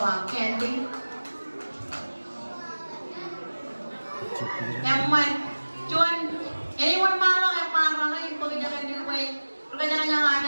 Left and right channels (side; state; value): both; inverted; correlation -1.00